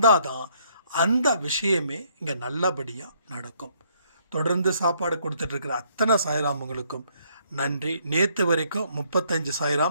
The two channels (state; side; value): inverted; both; correlation -0.68